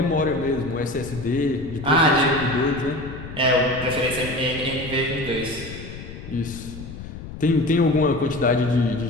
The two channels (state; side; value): noise; left; rumble, 12 dB below the sound